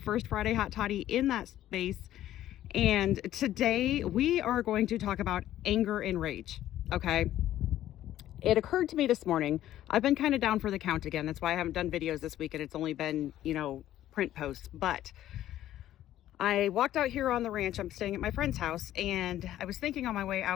Friday Hot Toddy in that space. And today we are going to talk about anger and rage, okay? It occurred to me this morning, I've been kind of down for the count again. That's why I haven't done videos this week and it's only been, print posts. But I walked out here on the ranch. I'm staying at my friend's house, and I was thinking on my way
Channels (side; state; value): right; quieter; 12.9 dB